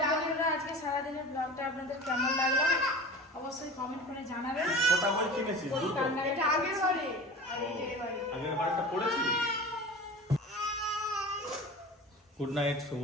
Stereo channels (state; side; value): normal; both; correlation 0.35